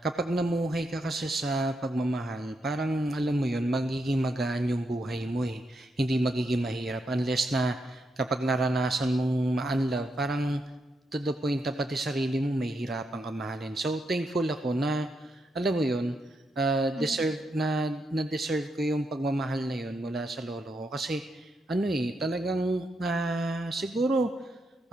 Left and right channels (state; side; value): normal; both; correlation 0.82